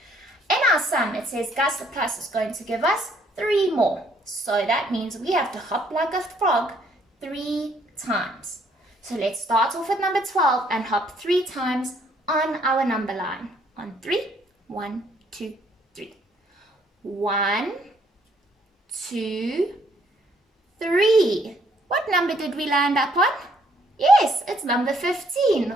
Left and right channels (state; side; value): normal; both; correlation 0.66